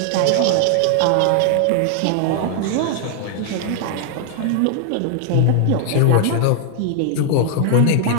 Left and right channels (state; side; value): different; both; correlation 0.00